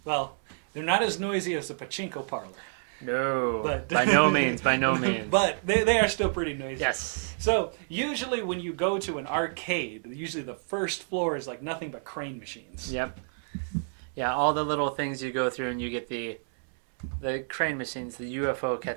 Well, they're not as noisy as the pachinko parlor. No, but by no means, by no means. But they are still pretty noisy. Yes. So usually when you go to an arcade, usually the first floor is like nothing but crane machines. Yep. Yeah, all the little things you go through, and you get the crane machines, the UFO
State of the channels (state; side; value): silent; left; 59 dB below the other